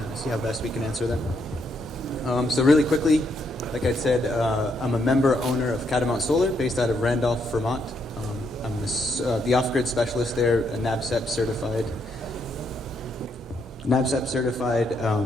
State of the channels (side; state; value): both; normal; correlation 0.76